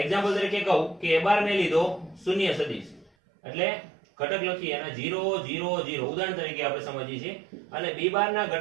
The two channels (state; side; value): drops out; left; at 3.1 s